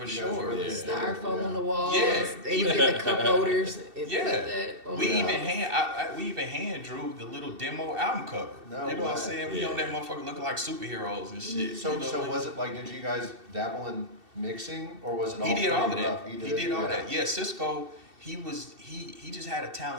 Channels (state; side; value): late; left; 2.7 ms